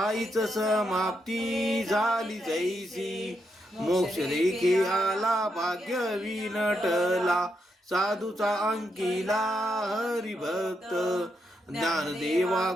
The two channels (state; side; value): normal; both; correlation 0.82